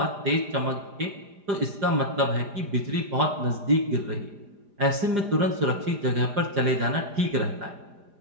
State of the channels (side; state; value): left; late; 4.9 ms